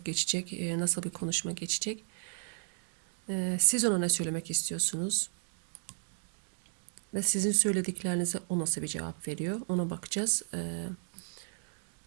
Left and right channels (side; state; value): left; silent; digital silence